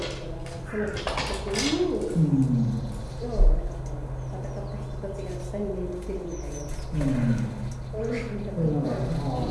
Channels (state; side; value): identical; both; correlation 1.00